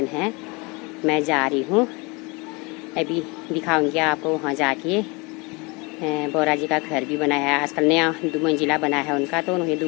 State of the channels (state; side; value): quieter; right; 27.6 dB